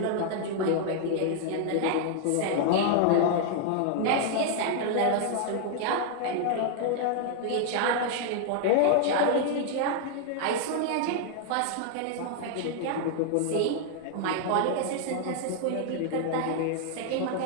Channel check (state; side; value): different; both; correlation 0.00